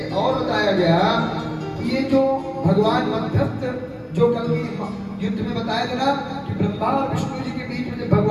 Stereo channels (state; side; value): identical; both; correlation 1.00